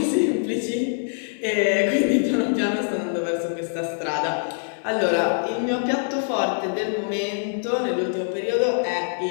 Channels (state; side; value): silent; right; 61 dB below the other